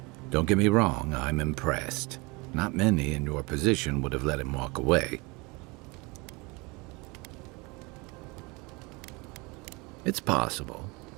Don't get me wrong, I'm impressed. Not many in your position would have let him walk away. It's possible.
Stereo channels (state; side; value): quieter; left; 26.6 dB